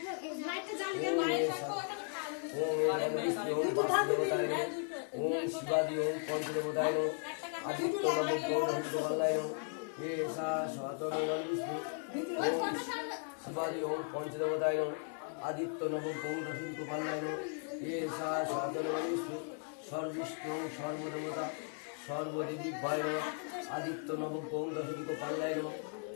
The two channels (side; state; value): right; silent; 53 dB below the other